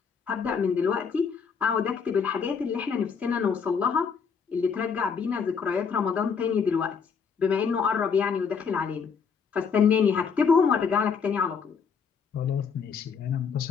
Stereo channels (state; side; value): quieter; right; 6.1 dB